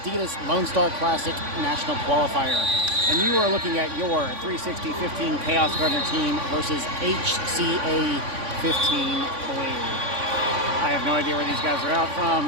Lone Star Classic National Qualifier. And you are looking at your 360-15 Kaos Gardner team versus HCA 15 Blue. I have no idea where these guys are out from.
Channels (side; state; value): left; late; 3.5 ms